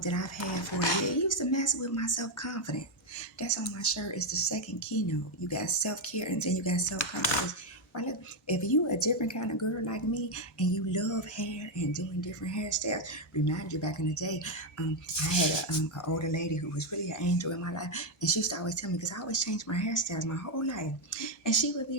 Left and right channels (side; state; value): both; normal; correlation 0.03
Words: I've had for a year, it used to mess with my self-confidence. That's on my shirt. It's the second keynote. You got self-care and then you got self-confidence. Right, look, if you a different kind of girl like me and you love hair and doing different hairstyles, remind you back in the day, I had an older lady who was really an angel in my life, and she used to always tell me, because I always changed my hairstyles my whole life, and she would